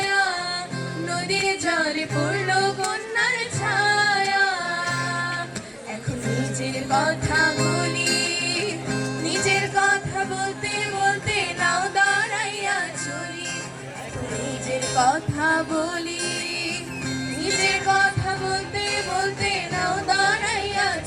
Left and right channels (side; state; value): both; identical; correlation 1.00